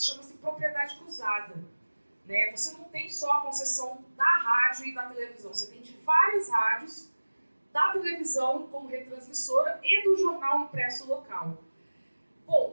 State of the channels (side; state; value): both; inverted; correlation -1.00